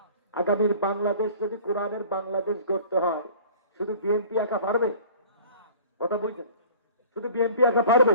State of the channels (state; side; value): inverted; both; correlation -0.46